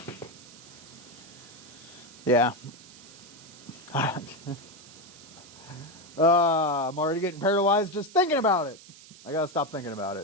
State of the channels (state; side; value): noise; right; hiss, 19 dB below the sound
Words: Yeah. I'm already getting paralyzed just thinking about it. I gotta stop thinking about